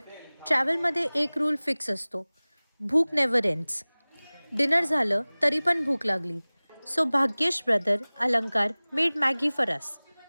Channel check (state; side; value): inverted; both; correlation -1.00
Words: ट्रॅव्हलमध्ये एक रूल फिक्स असतो, भूक नेव्हर एंड्स. डिनर झालं तरी पण भूक लागली. सो भाग्येश ब्रदर अलंकार मेड मॅगी फॉर अस.